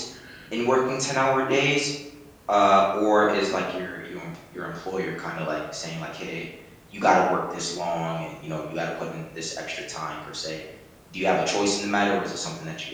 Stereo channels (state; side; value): identical; both; correlation 1.00